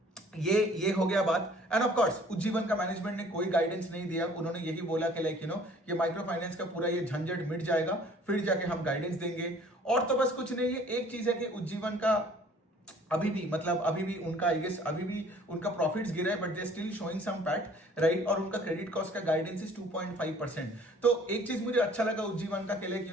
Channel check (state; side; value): normal; both; correlation 0.54